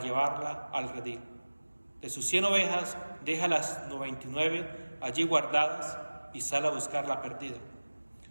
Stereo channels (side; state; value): both; inverted; correlation -1.00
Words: al redil. De sus 100 ovejas, deja las 99 allí guardadas y sale a buscar la perdida.